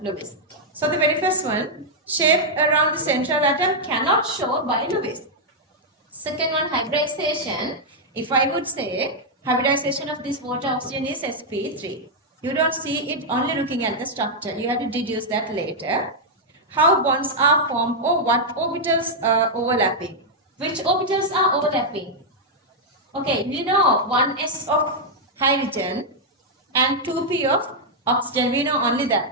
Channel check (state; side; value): normal; both; correlation -0.04